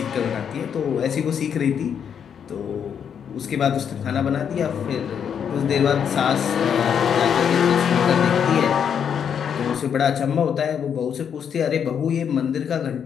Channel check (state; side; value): quieter; right; 7.9 dB